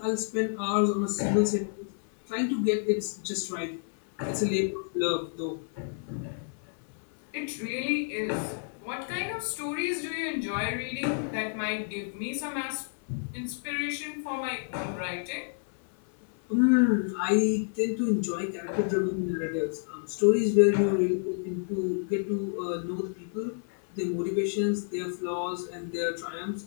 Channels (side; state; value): right; silent; 57 dB below the other